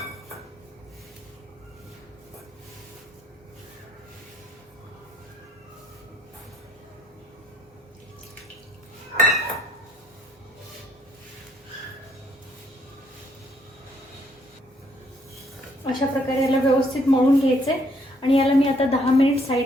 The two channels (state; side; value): normal; both; correlation 0.68